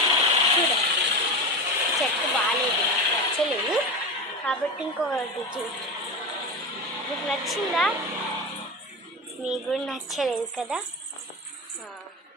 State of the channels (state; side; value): normal; both; correlation 0.24